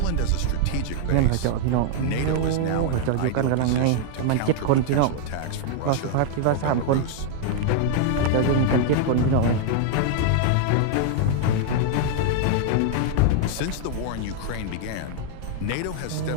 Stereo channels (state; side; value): different; both; correlation 0.00